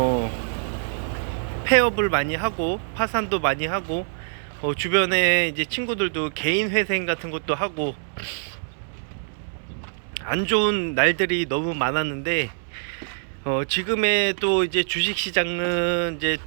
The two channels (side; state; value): left; silent; 62 dB below the other